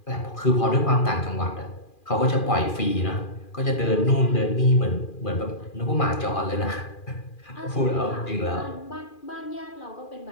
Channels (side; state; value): right; late; 2.4 ms